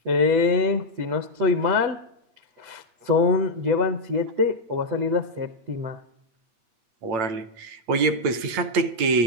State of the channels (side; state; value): left; late; 8.8 ms